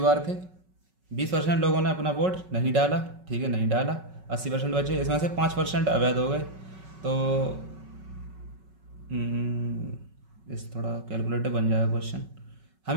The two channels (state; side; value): late; left; 5.4 ms